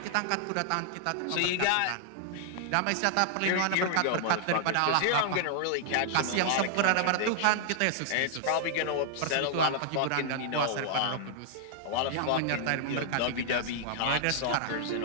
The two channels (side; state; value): both; different; correlation -0.01